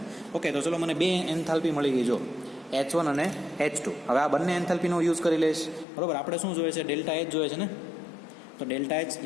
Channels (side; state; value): right; drops out; at 5.9 s